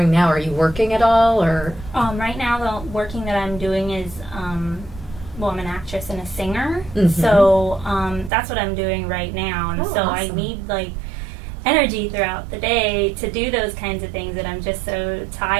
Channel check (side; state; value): left; drops out; at 8.3 s